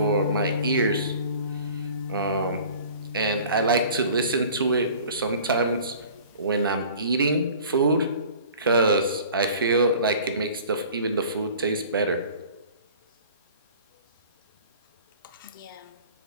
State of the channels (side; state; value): both; inverted; correlation -0.46